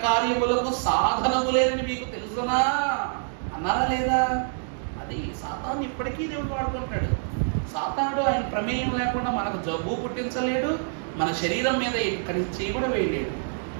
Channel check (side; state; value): left; silent; digital silence